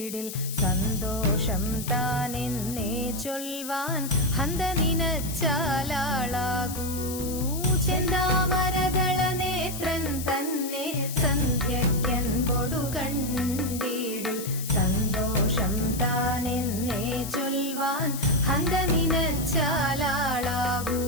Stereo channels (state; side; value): noise; left; hiss, 9 dB below the sound